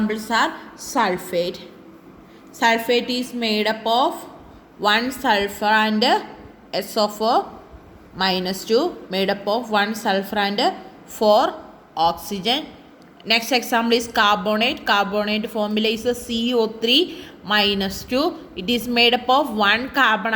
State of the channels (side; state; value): both; identical; correlation 1.00